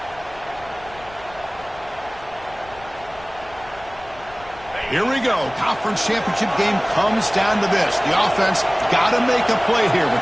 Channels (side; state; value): left; noise; rumble, 21 dB below the sound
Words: Here we go. Conference championship game comes down to this. The offense got to make a play here with